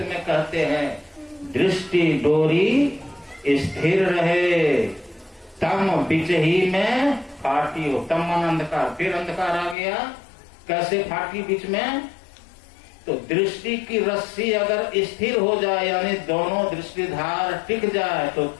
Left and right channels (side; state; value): right; drops out; at 9.8 s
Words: में कहते हैं, दृष्टि डोरी स्थिर रहे, तम बीच ही में फाटी हो। तम मन अंधकार, फिर अंधकार आ गया, कैसे फाटी बीच में? तो दृष्टि की रस्सी अगर स्थिर हो जाए, यानी दोनों दृष्टिधार टिक जाए, तो